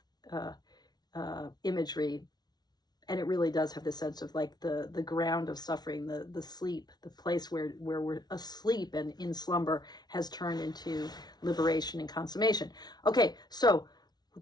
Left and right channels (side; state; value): right; late; 0.19 ms